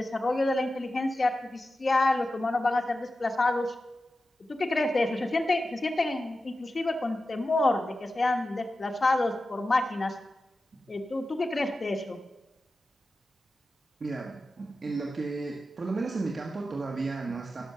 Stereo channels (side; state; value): both; normal; correlation 0.93